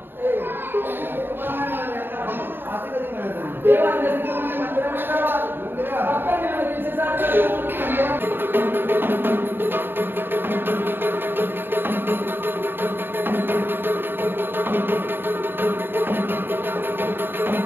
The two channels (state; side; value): late; left; 0.099 ms